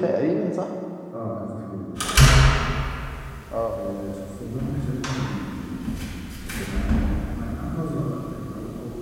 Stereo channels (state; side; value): identical; both; correlation 1.00